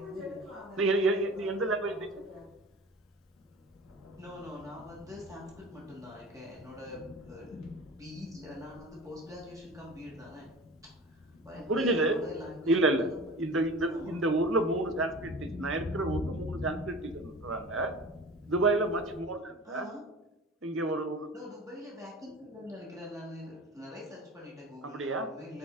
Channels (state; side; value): normal; both; correlation 0.38